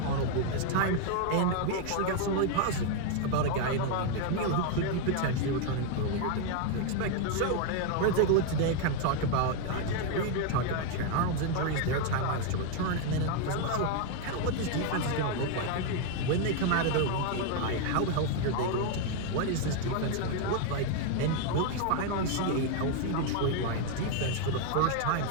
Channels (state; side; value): different; both; correlation 0.01